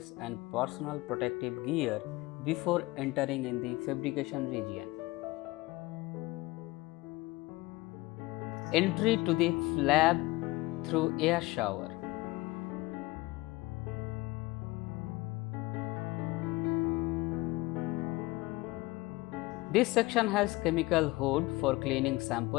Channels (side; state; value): right; quieter; 21.3 dB